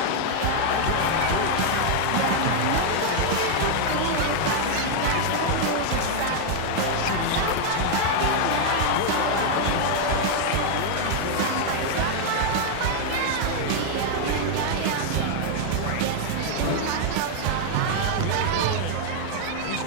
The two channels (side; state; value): both; different; correlation 0.00